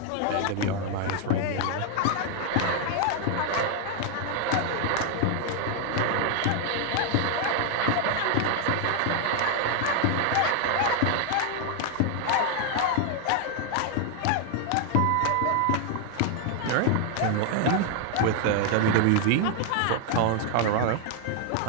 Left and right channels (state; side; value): different; both; correlation 0.00